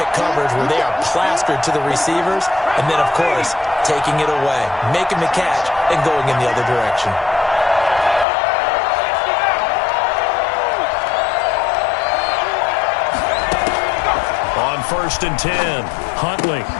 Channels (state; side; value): drops out; right; at 8.2 s